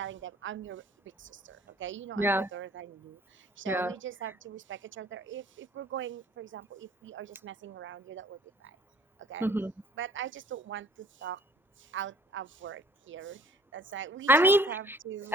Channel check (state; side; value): normal; both; correlation 0.55